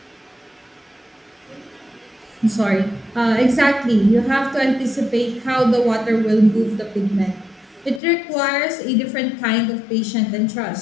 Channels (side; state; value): right; drops out; at 8.0 s